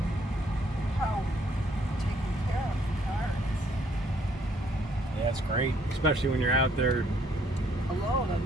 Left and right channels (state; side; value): normal; both; correlation 0.66